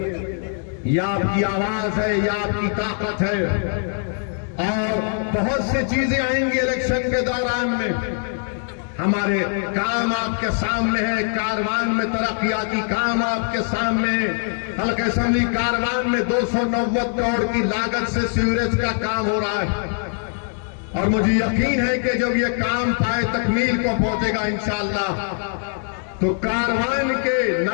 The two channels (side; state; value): right; silent; 58 dB below the other